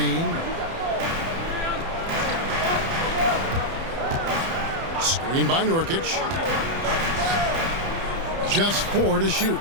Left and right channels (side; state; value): left; late; 30 ms